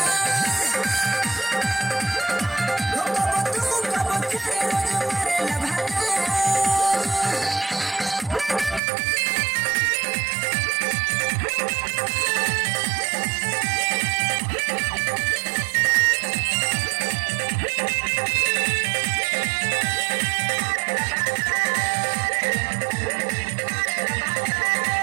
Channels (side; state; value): left; drops out; at 8.8 s